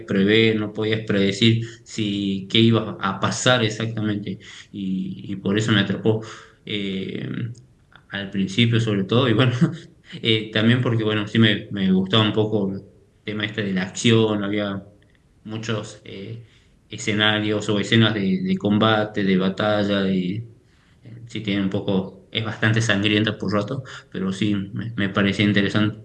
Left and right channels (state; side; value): identical; both; correlation 1.00